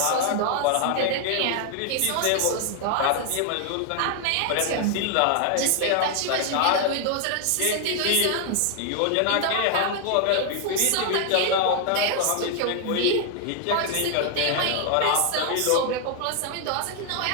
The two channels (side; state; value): both; different; correlation 0.00